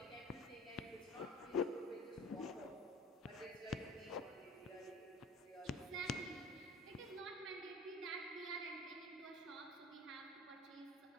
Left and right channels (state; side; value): normal; both; correlation 0.42